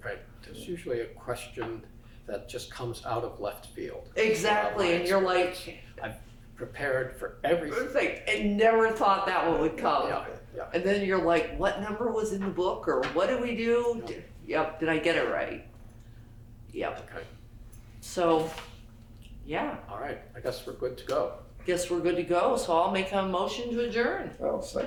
Right. There's usually a question that just comes out of left field. Exactly, and you're like, I've prepared for everything. it's like, I never thought that one would come. Yeah, yeah. And then you're like, what number was in the book, or what did we do? Yep, did I get it right? Yep. Okay. So, yeah, All right. I guess we're good to go. guess we're good to go. So I'll make a motion to adjourn. I'll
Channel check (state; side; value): identical; both; correlation 1.00